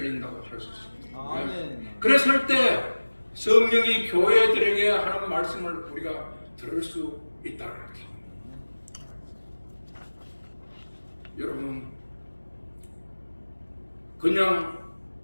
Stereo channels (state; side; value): inverted; both; correlation -1.00